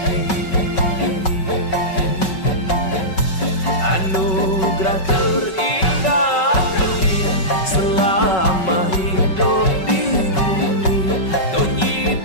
cinta terindah selama hidup di bumi. Tonyi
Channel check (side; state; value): right; late; 5.3 ms